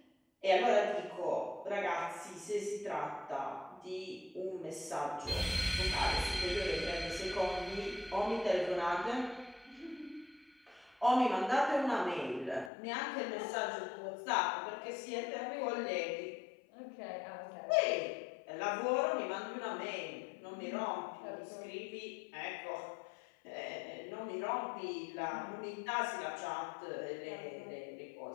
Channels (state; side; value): drops out; right; at 12.7 s